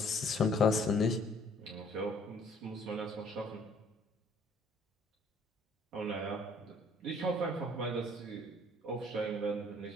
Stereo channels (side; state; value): both; normal; correlation 0.59